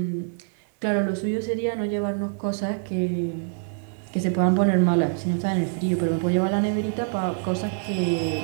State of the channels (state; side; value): silent; left; 62 dB below the other